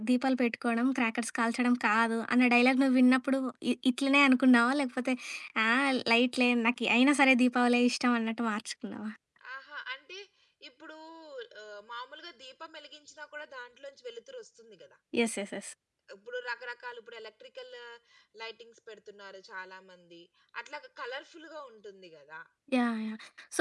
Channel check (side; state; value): both; identical; correlation 1.00